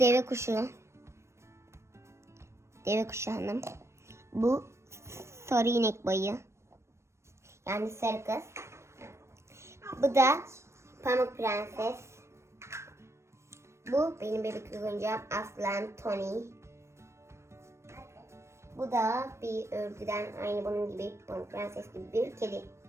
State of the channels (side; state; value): left; late; 0.13 ms